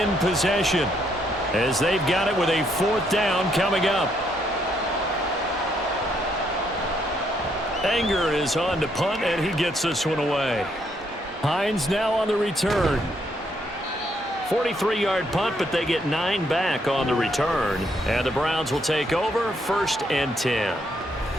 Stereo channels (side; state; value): both; normal; correlation 0.73